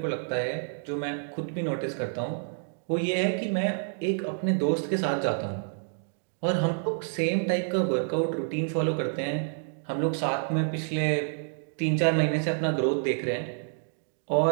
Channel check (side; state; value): left; silent; digital silence